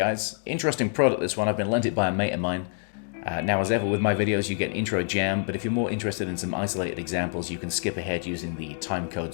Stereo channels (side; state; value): right; silent; digital silence